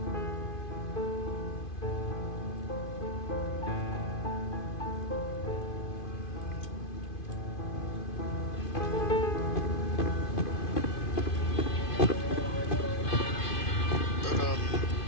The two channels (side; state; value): right; late; 2.5 ms